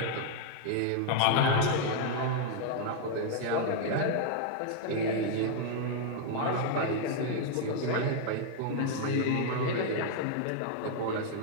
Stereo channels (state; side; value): different; both; correlation 0.00